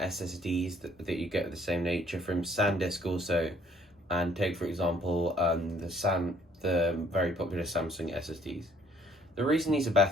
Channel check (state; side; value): normal; both; correlation 0.62